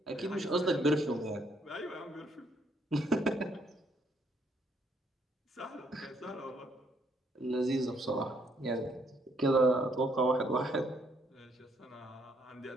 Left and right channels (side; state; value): both; normal; correlation 0.70